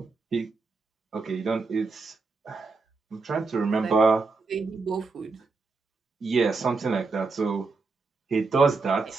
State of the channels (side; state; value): left; quieter; 4.1 dB